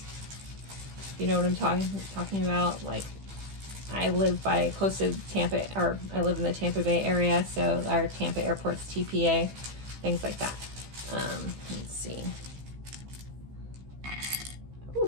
You know what I'm talking about? Like, I live close to Tampa, or I live in the Tampa Bay area, so our Tampa airport's TPA, things like that. Let's see.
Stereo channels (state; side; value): late; left; 15 ms